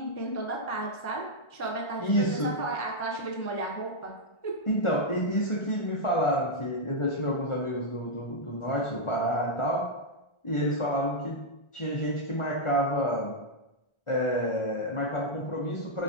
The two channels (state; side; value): late; right; 1.4 ms